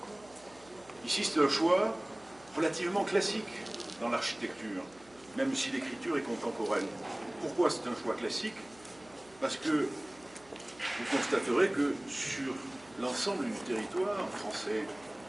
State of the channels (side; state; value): right; noise; hum, 26 dB below the sound